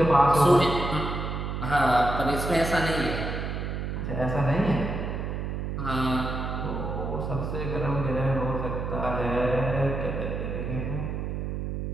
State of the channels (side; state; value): right; noise; hum, 3 dB below the sound